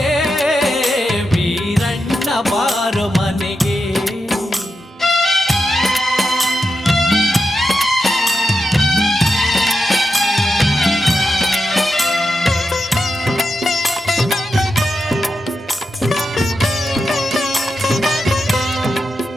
ವೀರಣ್ಣ ಬಾರು ಮನೆಗೆ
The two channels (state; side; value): normal; both; correlation 0.88